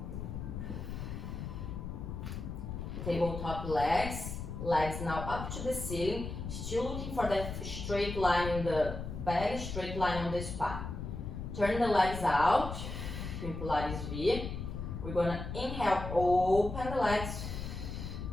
Tabletop legs. Legs now up to the ceiling. Still looking for that straight line in the back, straight line on the spine. Turn the legs out in Pilates V. We're gonna inhale, open the legs.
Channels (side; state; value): left; noise; rumble, 6 dB below the sound